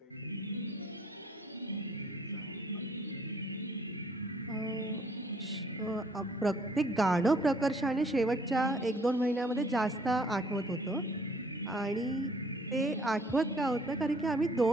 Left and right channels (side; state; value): both; normal; correlation 0.61